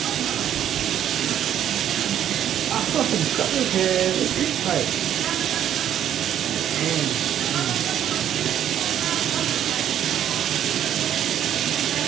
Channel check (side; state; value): left; quieter; 10.3 dB